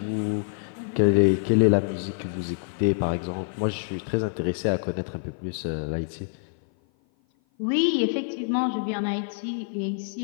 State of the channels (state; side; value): silent; right; 56 dB below the other